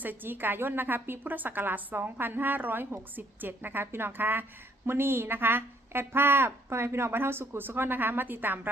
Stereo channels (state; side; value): normal; both; correlation 0.66